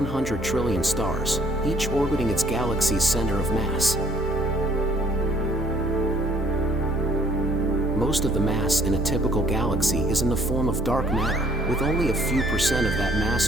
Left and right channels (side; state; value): both; normal; correlation 0.60